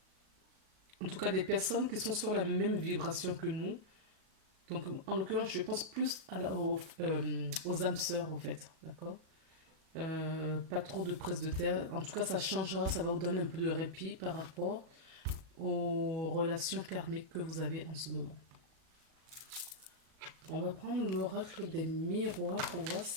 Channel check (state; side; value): late; left; 37 ms